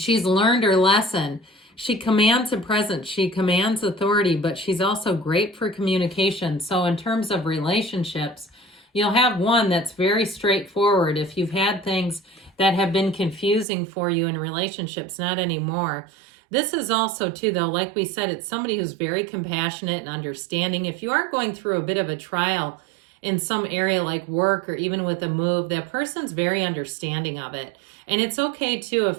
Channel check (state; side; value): drops out; left; at 13.7 s